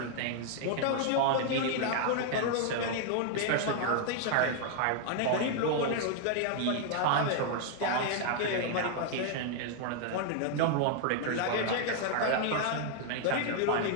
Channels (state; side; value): different; both; correlation 0.00